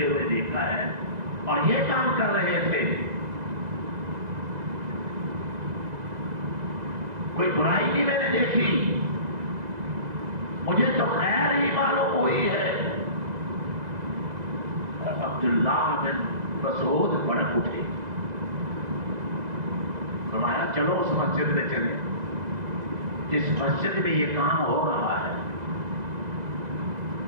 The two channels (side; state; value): left; late; 2.0 ms